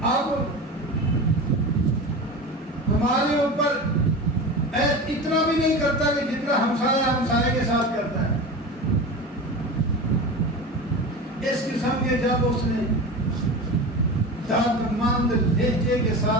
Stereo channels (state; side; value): normal; both; correlation 0.29